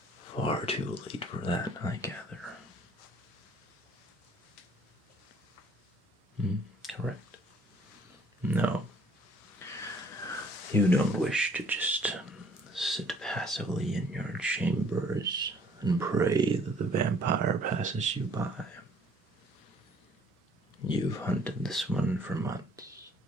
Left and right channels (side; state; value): both; normal; correlation 0.58